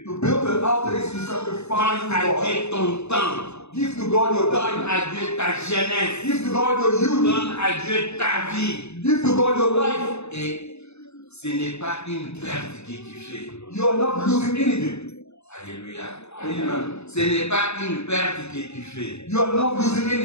To build an altar is to sacrifice Donne à to God. Dieu ton temps. Give to God your Donne time. à Dieu ta jeunesse. Give to God your youth. Donne à Dieu ta vie. Give to God your life. Et ce n'est pas une perte que tu fais. You are not losing anything. Alléluia. Amen. Ce n'est pas une perte que tu fais. You are not losing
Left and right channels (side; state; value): right; late; 0.80 ms